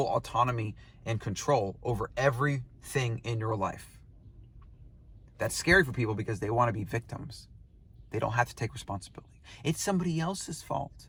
autonomy and control over everything in your life. That's scary for people because they want to be victims. They don't have to take responsibility. It's somebody else's fault.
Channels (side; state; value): both; identical; correlation 1.00